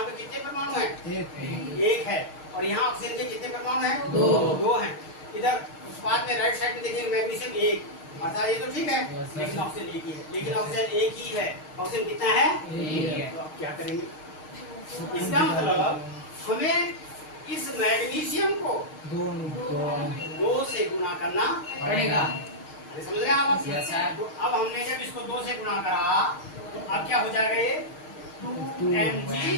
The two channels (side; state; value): right; late; 6.5 ms